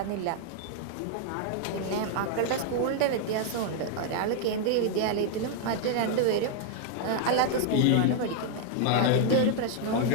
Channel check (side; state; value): both; different; correlation 0.00